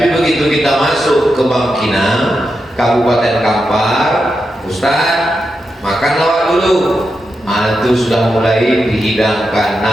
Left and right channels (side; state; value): both; normal; correlation 0.87